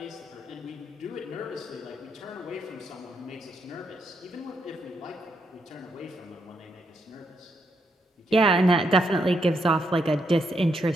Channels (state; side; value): normal; both; correlation 0.78